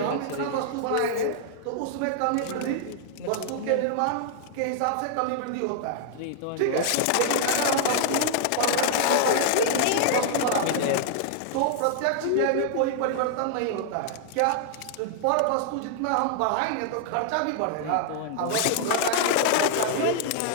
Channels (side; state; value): both; different; correlation -0.01